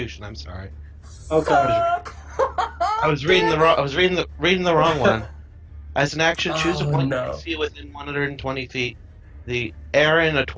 I'm sorry. Okay. I was reading the wrong. I was reading the wrong one. As an action, choose a Oh, point no. you see within 120 feet. The air in a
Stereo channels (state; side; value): identical; both; correlation 1.00